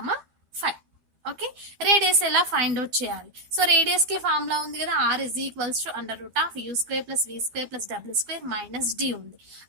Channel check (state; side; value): late; left; 12 ms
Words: 5. Okay, radius ఎలా find out చేయాలి? So radius కి ఫార్ములా ఉంది కదా, r is equals to √u² + v² + w² - d ఉంది.